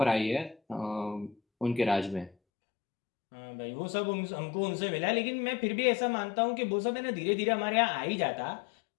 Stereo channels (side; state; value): right; drops out; at 2.4 s